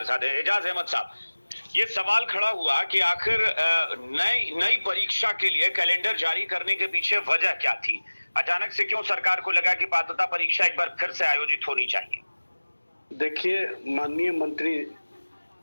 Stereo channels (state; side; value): inverted; both; correlation -1.00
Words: साथ हैं, एजाज अहमद साहब। ये सवाल खड़ा हुआ कि आखिर नई परीक्षा के लिए कैलेंडर जारी करने के पीछे वजह क्या थी? अचानक से क्यों सरकार को लगा कि पात्रता परीक्षा एक बार फिर से आयोजित होनी चाहिए? देखिए, माननीय मंत्री